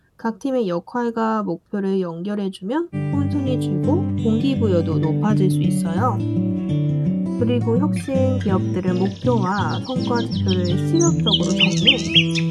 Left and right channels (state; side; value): identical; both; correlation 1.00